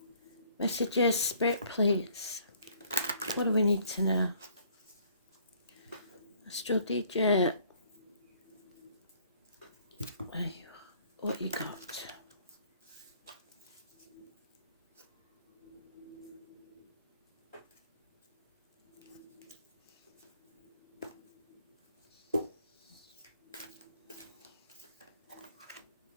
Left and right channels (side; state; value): both; inverted; correlation -0.60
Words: Messages, Spirit, please. What do we need to know? Astro DJ. What you got?